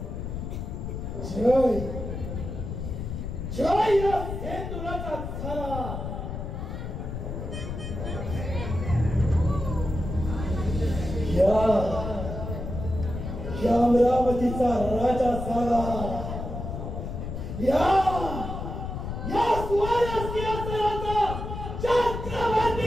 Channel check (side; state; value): left; noise; rumble, 6 dB below the sound